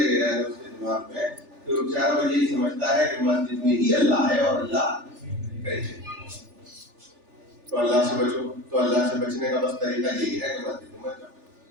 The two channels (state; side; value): late; left; 3.4 ms